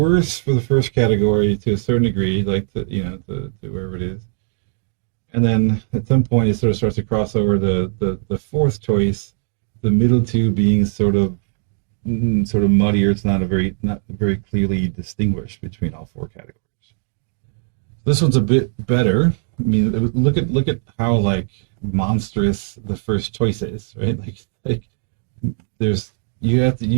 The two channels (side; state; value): left; silent; 65 dB below the other